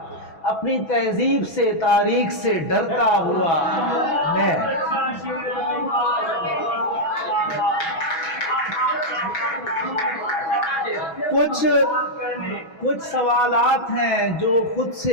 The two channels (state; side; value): late; right; 6.1 ms